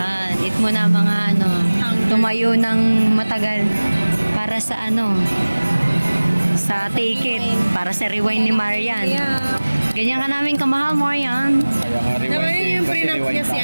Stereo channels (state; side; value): inverted; both; correlation -1.00